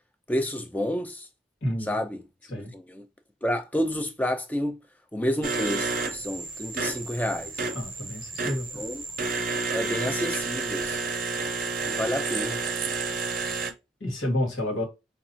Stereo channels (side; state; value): both; normal; correlation 0.68